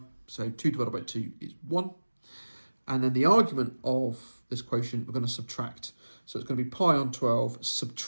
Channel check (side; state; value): both; inverted; correlation -1.00